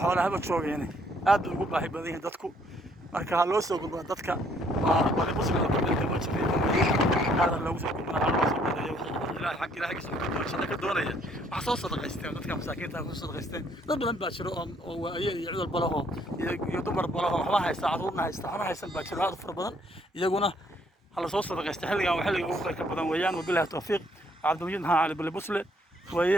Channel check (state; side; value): normal; both; correlation 0.66